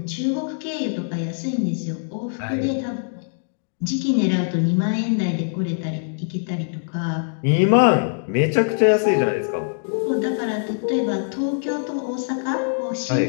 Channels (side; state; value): right; silent; digital silence